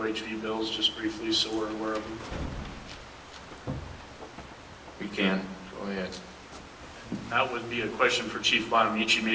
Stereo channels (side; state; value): both; identical; correlation 1.00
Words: bills, just briefly, so we're aware of them? We can. Go ahead. That would be a question for Chief Bonamici,